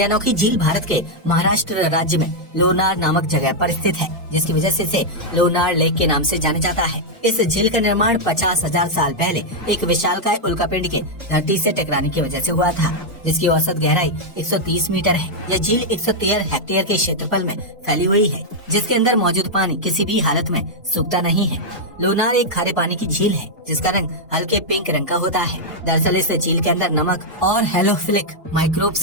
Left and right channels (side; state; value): both; normal; correlation -0.03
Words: अनोखी झील भारत के महाराष्ट्र राज्य में लोनार नामक जगह पर स्थित है, जिसकी वजह से इसे लोनार लेक के नाम से जाना जाता है। इस झील का निर्माण 50,000 साल पहले एक विशालकाय उल्कापिंड के धरती से टकराने की वजह से हुआ था, जिसकी औसत गहराई 130 मीटर है। यह झील 113 हेक्टेयर के क्षेत्रफल में फैली हुई है, जिसके अंदर मौजूद पानी किसी भी हालत में सूखता नहीं है। लोनार एक खारे पानी की झील है जिसका रंग हल्के पिंक रंग का होता है। दरअसल इस झील के अंदर नमक और हेलोफिलिक माइक्रोब्स